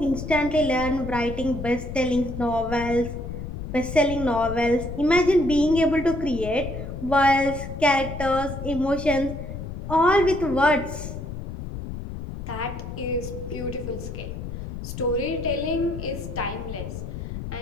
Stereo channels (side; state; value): left; noise; rumble, 8 dB below the sound